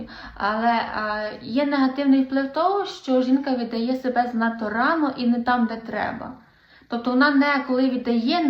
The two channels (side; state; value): both; identical; correlation 1.00